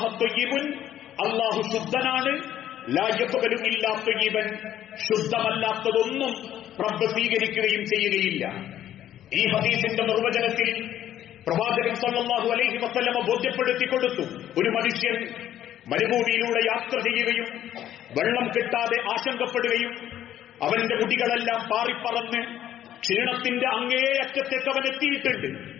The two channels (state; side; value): quieter; right; 11.6 dB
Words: ത്വയ്യിബുൻ, അല്ലാഹു ശുദ്ധനാണ്, ലാ യഖ്ബലു ഇല്ലാ ത്വയ്യിബൻ, ശുദ്ധമല്ലാത്തതൊന്നും റബ്ബ് സ്വീകരിക്കുകയും ചെയ്യുകയില്ല. ഈ ഹദീസിന്റെ നിർവചനത്തിൽ പ്രവാചകൻ സല്ലല്ലാഹു അലൈഹി വസല്ലം ബോധ്യപ്പെടുത്തി കൊടുത്തു, ഒരു മനുഷ്യൻ മരുഭൂമിയിലൂടെ യാത്ര ചെയ്യുകയും വെള്ളം കിട്ടാതെ ആശങ്കപ്പെടുകയും അവന്റെ മുടികളെല്ലാം പാറിപ്പറന്ന് ക്ഷീണത്തിന്റെ അങ്ങേയറ്റത്തേക്ക് അവൻ എത്തിയിട്ടുണ്ട്.